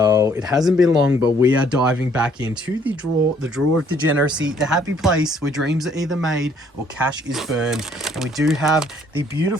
It hasn't been long, but we are diving back into the drawer of degeneracy, the happy place where dreams are either made or cash is burned. And we do have the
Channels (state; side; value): normal; both; correlation 0.63